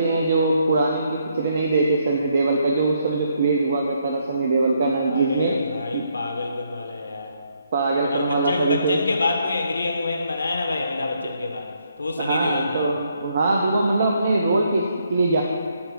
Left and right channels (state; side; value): inverted; both; correlation -0.73